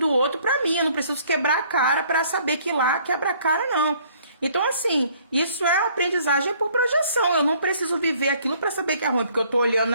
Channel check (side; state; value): both; inverted; correlation -0.60